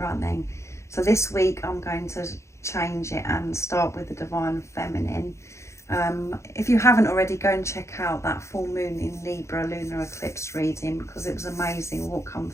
So this week I'm going to change it and start with the divine feminine. If you haven't already, go and check out that full moon in Libra lunar eclipse reading, because it was amazing what come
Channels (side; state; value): right; late; 0.14 ms